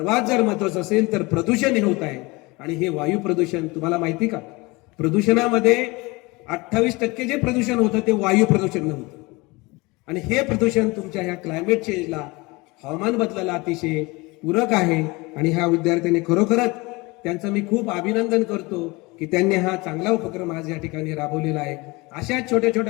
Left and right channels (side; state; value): right; quieter; 24.2 dB